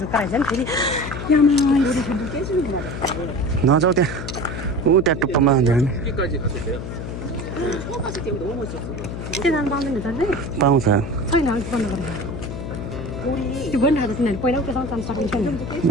नि फेरि नजाऊ त्यहाँ ऊ त्यहाँ टुप्पामा पाउँछ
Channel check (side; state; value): left; noise; hum, 7 dB below the sound